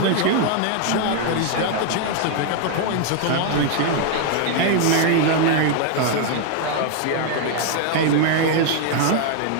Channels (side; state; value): both; different; correlation 0.00